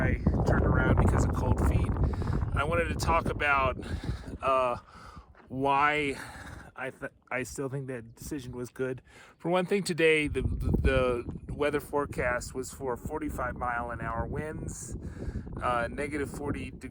turned around because of cold feet. I wanted to talk about why I still think that decision was good. For one thing, today the weather forecast was for 45-mile-an-hour winds, negative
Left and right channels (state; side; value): identical; both; correlation 1.00